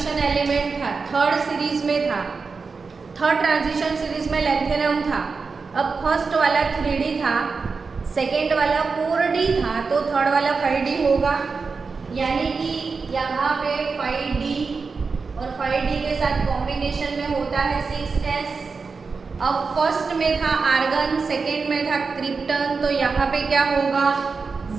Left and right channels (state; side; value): quieter; left; 4.7 dB